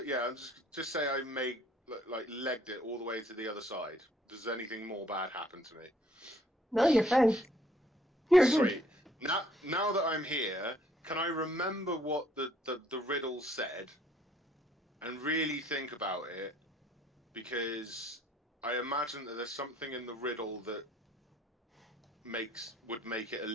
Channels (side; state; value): both; normal; correlation 0.62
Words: yeah, I'm just say I made like legged it all the way to the other side. Does anything more bad happen to me? No, you're fine. You're good. Sweet. Now that I'm here, can I remember what the riddle said and really think about it? Because I imagine that there's something in the riddle that would make it a